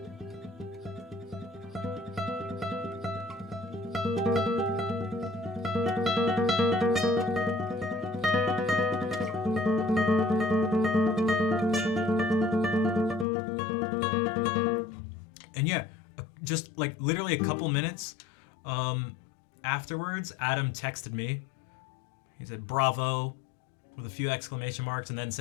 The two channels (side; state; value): right; drops out; at 13.2 s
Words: And yeah, just like literally a couple minutes afterwards, Adam texted me. He said, bravo, with a few exclamation marks, and then